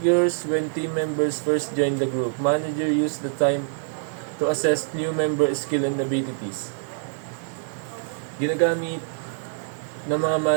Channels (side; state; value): left; silent; digital silence